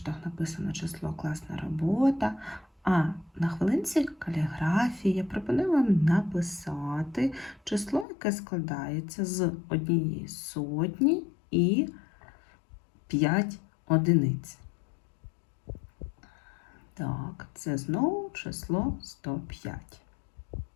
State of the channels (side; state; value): right; drops out; at 8.1 s